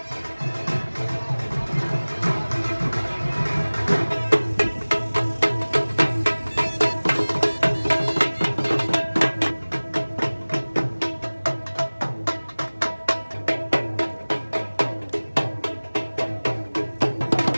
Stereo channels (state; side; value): inverted; both; correlation -1.00